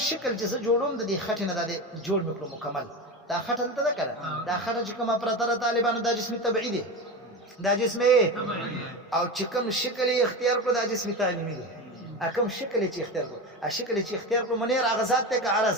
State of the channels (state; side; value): normal; both; correlation 0.23